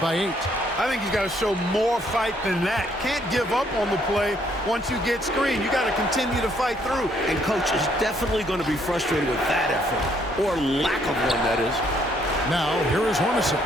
by 8. I think he's got to show more fight than that. Can't give up on the play once you get screened. You got to continue to fight through. And coach is definitely going to be frustrated with that effort, or lack of one, that is. Now, here is Hornacek.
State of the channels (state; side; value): normal; both; correlation 0.68